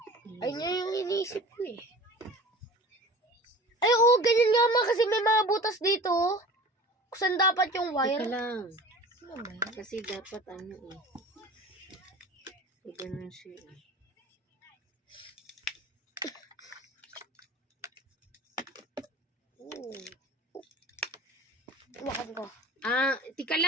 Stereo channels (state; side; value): normal; both; correlation 0.39